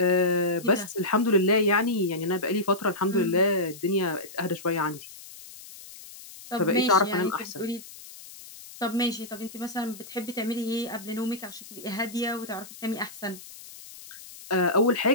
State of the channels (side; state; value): left; noise; hiss, 17 dB below the sound